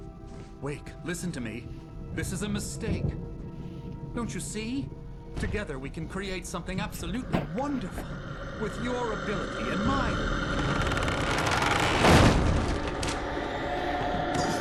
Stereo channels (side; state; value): both; identical; correlation 1.00